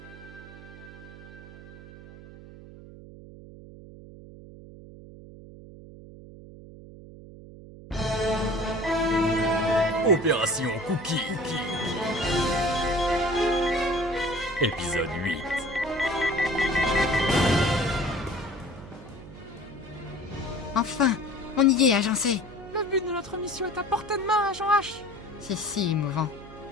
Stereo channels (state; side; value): noise; right; hum, 17 dB below the sound